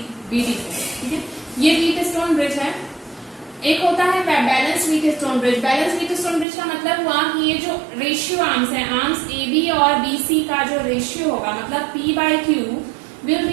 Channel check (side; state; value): left; drops out; at 6.5 s